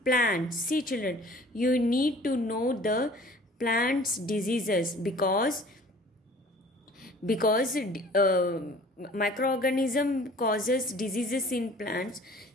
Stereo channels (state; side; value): normal; both; correlation 0.49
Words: plants. See children, you need to know the plants diseases because microorganism causes diseases in plants.